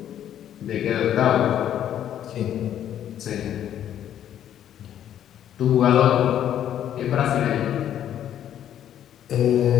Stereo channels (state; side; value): quieter; right; 10.6 dB